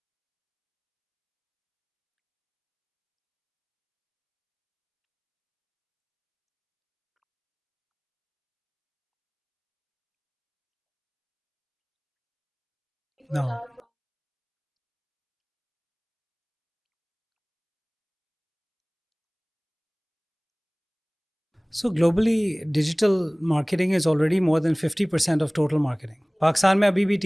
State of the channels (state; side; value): identical; both; correlation 1.00